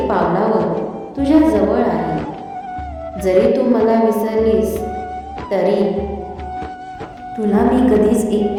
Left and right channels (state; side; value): identical; both; correlation 1.00